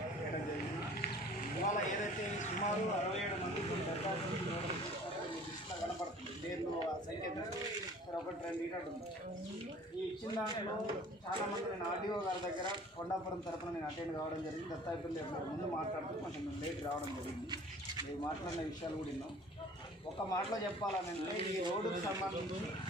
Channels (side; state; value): both; normal; correlation 0.49